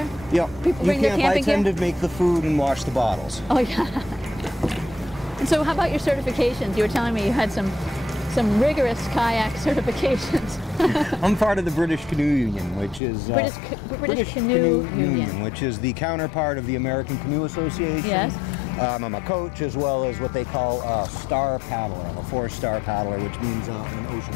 Yep. People bring their camping gear? I tend to make the food and wash the bottles. Oh, yeah. And so how about your certifications? You were telling me you had some rigorous kayak certifications. I'm part of the British Canoe Union, which is British Canoe Union, which is the counterpart of the American Canoe Association. Yes. I'm a coach as well as what they call a star paddler. I'm a 4-star paddler, which means an ocean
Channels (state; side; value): drops out; right; at 13.0 s